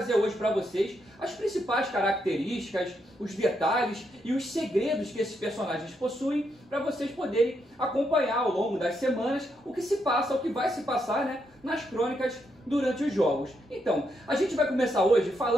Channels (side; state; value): both; normal; correlation 0.79